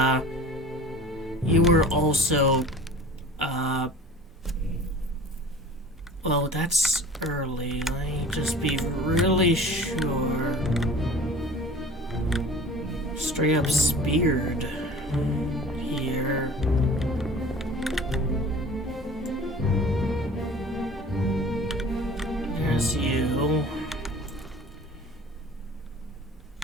you were also, well, that's early. Let me just be really sure. Straight up speared here. There's you.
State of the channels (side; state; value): both; normal; correlation 0.43